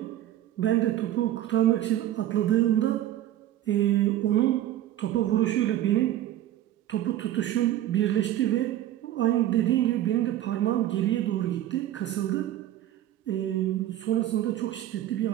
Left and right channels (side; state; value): left; quieter; 12.9 dB